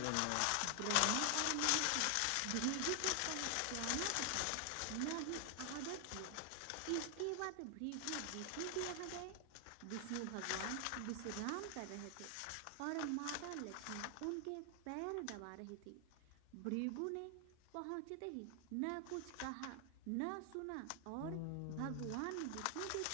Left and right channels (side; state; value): both; different; correlation 0.00